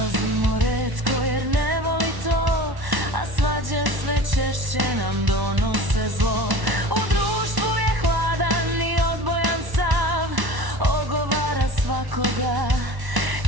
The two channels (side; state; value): left; late; 1.1 ms